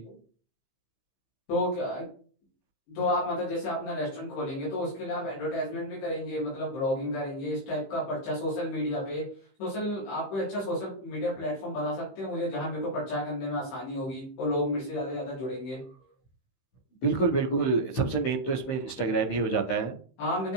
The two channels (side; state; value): right; late; 15 ms